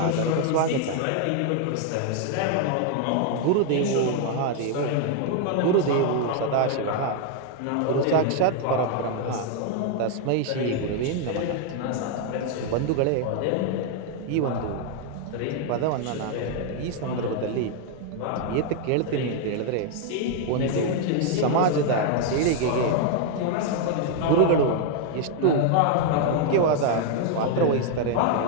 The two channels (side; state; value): both; different; correlation 0.00